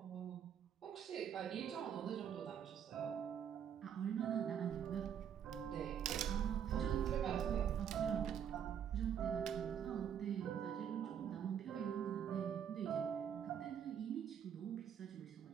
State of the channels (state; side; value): quieter; left; 8.6 dB